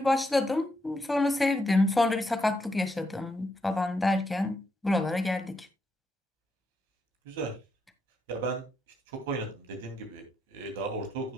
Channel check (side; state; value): both; normal; correlation 0.80